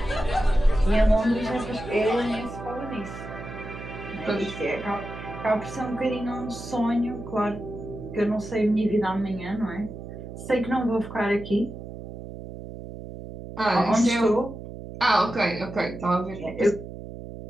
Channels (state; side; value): noise; right; hum, 11 dB below the sound